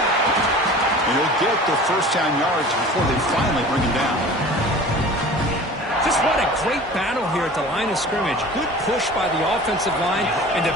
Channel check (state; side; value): normal; both; correlation 0.41